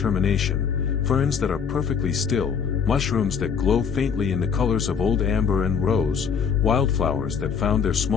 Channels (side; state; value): right; quieter; 6.6 dB